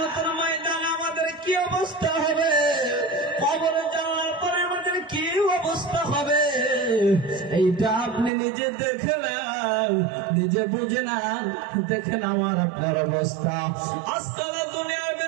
ময়দানে আমাদের কি অবস্থা হবে, কবরে যাওয়ার পরে আমাদের কি অবস্থা হবে, এইটা আপনি নিজে দেখে নেন, নিজে বুঝে নেন, দেখেন আমার আপনার অবস্থা। আজকাল দুনিয়ার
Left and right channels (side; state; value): left; drops out; at 8.3 s